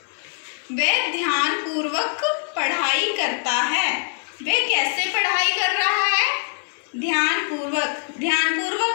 वह ध्यानपूर्वक पढ़ाई करता है। वह कैसे पढ़ाई कर रहा है?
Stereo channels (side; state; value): right; silent; 64 dB below the other